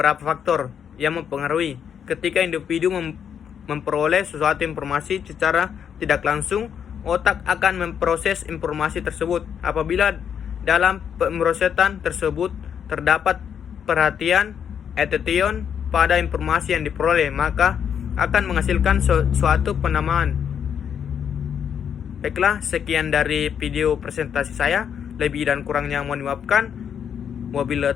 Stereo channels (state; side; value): quieter; right; 8.1 dB